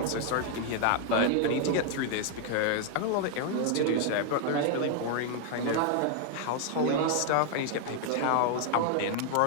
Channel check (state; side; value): different; both; correlation 0.00